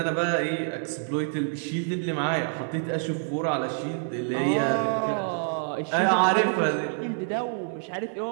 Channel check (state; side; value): silent; left; 60 dB below the other